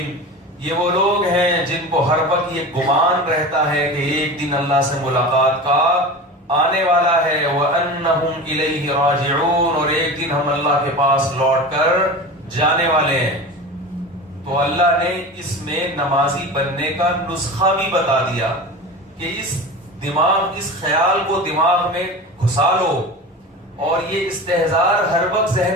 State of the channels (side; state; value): both; normal; correlation 0.31